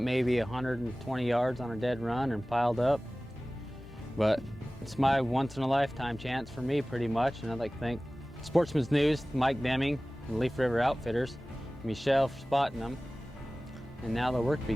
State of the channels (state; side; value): normal; both; correlation 0.98